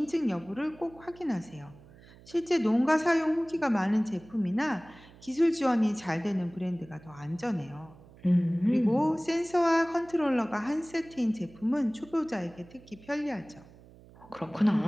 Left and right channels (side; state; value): right; noise; hum, 23 dB below the sound